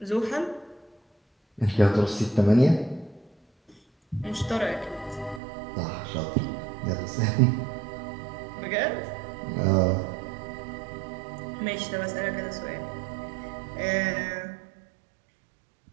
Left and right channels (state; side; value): drops out; left; at 5.4 s